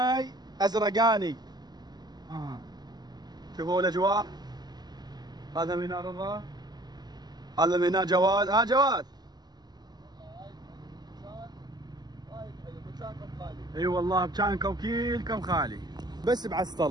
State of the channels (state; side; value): late; left; 0.20 ms